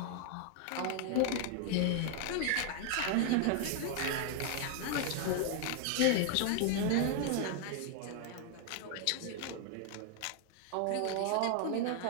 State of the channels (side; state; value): both; different; correlation 0.00